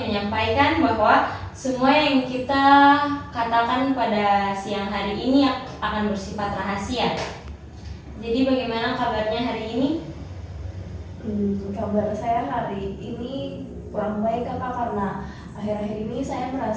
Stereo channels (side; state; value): both; identical; correlation 1.00